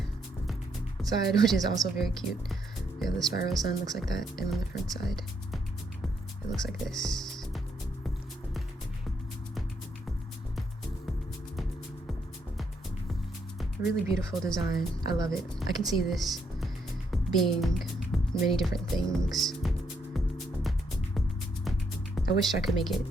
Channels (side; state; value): both; normal; correlation 0.75